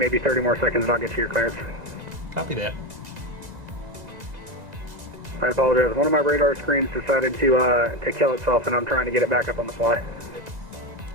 30 more seconds and I'll get you your clearance. Copy that. I apologize. One of my radar screens decided to kill itself, and I'm trying to get it back up on the fly.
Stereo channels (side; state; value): left; late; 2.0 ms